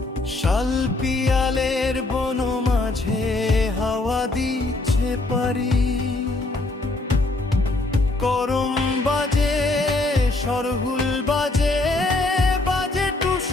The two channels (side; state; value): right; quieter; 3.0 dB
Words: শাল পিয়ালের বন মাঝে হাওয়া দিচ্ছে পারি। করম বাজে সরহুল বাজে, বাজে